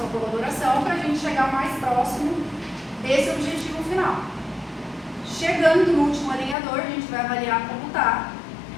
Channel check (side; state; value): right; drops out; at 6.6 s